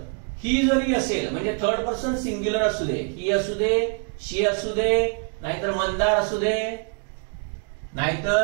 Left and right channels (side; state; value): left; quieter; 38.2 dB